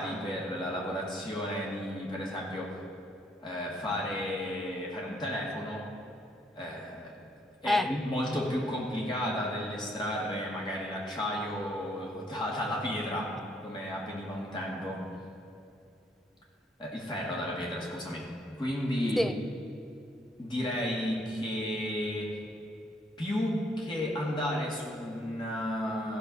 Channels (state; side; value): normal; both; correlation 0.69